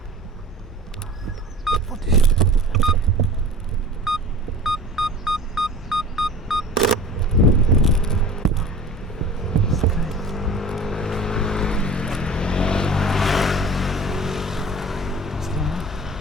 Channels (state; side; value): normal; both; correlation 0.41